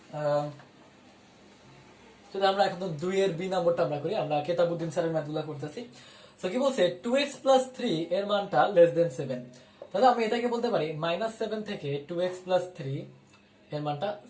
যদি আমরা এখন দুই এর বি নাম্বারটা আমরা করি, আমরা কেতাবুদ্দিন স্যারের ম্যাথগুলো করতেছি। তো কি বলছে, টু এক্স প্লাস থ্রি এর মানটা লেস দেন সেভেন। তাহলে আমি এটাকে বলতে পারি মাইনাস সেভেন থেকে টু এক্স প্লাস থ্রি এর মানটা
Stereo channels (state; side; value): identical; both; correlation 1.00